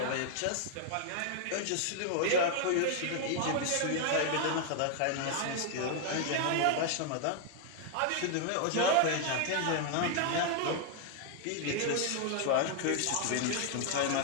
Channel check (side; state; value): both; different; correlation 0.00